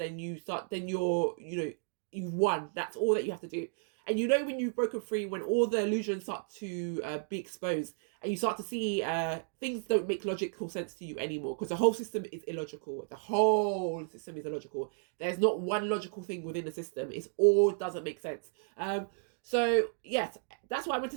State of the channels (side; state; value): left; silent; digital silence